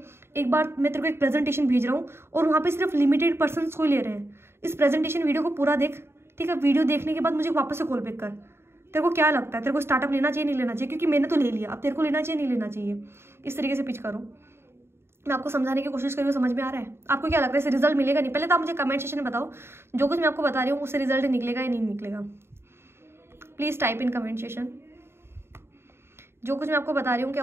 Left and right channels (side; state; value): left; late; 0.12 ms